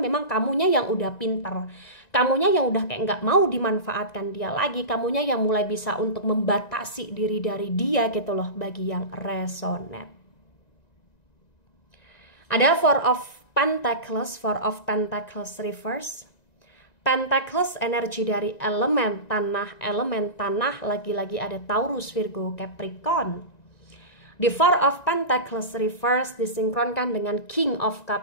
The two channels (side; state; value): right; late; 1.9 ms